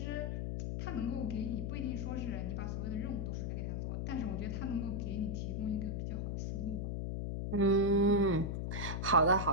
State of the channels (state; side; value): noise; left; hum, 2 dB below the sound